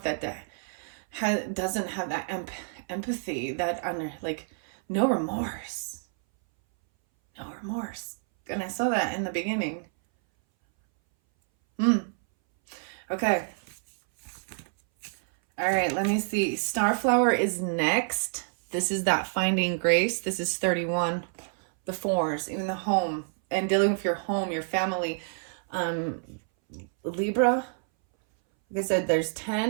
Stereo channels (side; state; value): left; silent; 59 dB below the other